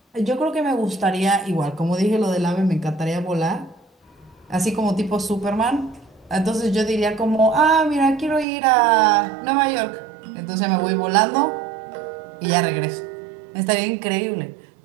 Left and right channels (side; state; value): left; drops out; at 8.5 s